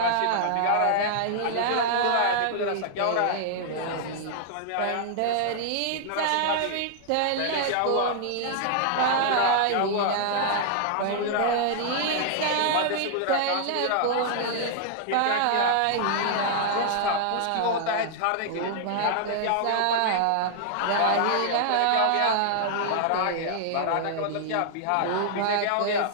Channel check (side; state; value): both; different; correlation -0.01